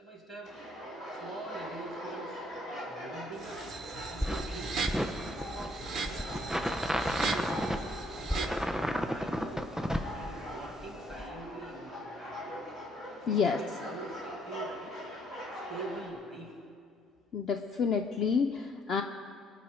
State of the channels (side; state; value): both; normal; correlation 0.68